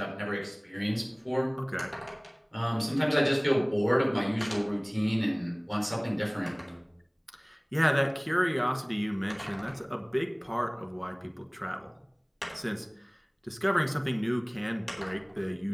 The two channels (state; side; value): identical; both; correlation 1.00